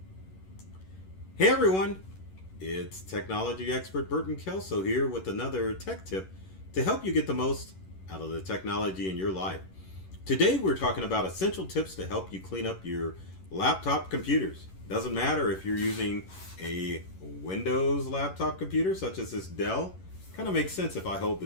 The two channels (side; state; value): right; late; 11 ms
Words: everyone, it's technology expert Burton Kelso here with another tech tip to help you get the most out of the technology in your life. Today we're talking about essential tips to help you clean up your laptop computers. Doesn't matter if you're using a Windows laptop computer such as this Dell. Kind of makes sense if I hold